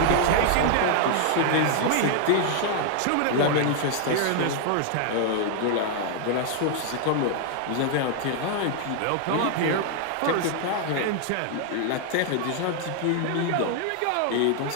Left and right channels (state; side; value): different; both; correlation 0.00